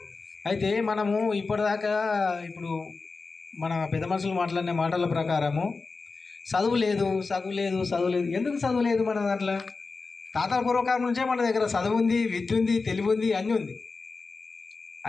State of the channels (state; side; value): quieter; right; 4.1 dB